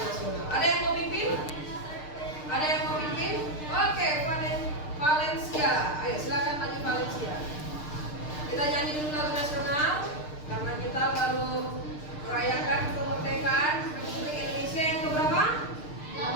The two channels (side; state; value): right; late; 6.6 ms